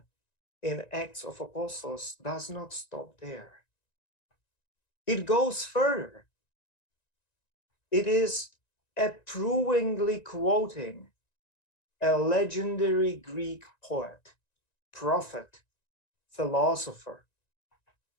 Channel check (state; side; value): late; right; 1.9 ms